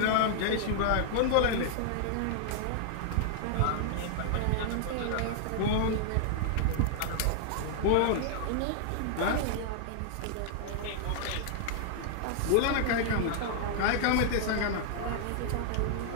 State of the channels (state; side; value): different; both; correlation 0.00